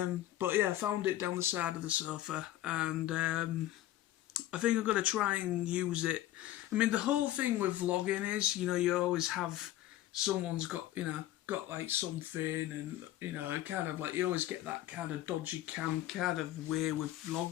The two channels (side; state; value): right; quieter; 14.1 dB